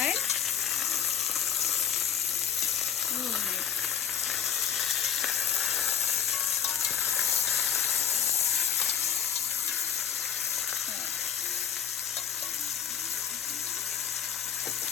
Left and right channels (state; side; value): quieter; right; 8.4 dB